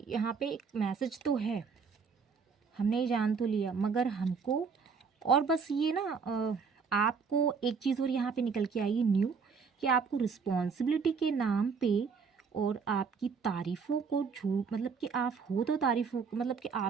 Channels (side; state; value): left; quieter; 5.6 dB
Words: यहाँ पे एक मैसेज तो है, हमने ये जान तो लिया, मगर हमको और बस ये ना आपको एक चीज़ और यहाँ पे निकल के आई न्यू, कि आपको रिस्पॉन्सिबिलिटी के नाम पे और आपकी तारीफ़ों को झूठ, मतलब कि आप हो तो तारीफ़ों, मतलब कि